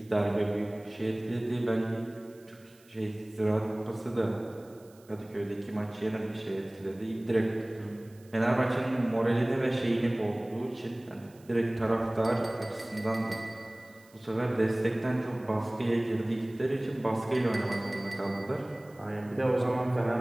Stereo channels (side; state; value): right; noise; hiss, 28 dB below the sound